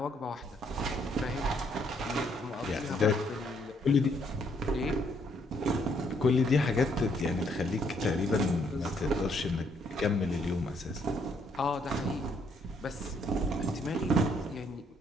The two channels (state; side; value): normal; both; correlation 0.70